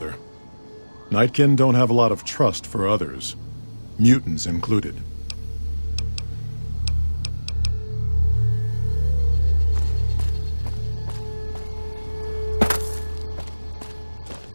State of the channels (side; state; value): both; inverted; correlation -1.00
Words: Nightkin don't have a lot of trust for others, mutants included.